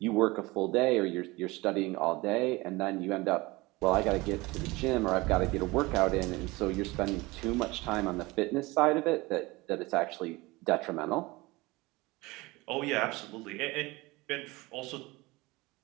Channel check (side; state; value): left; quieter; 22.2 dB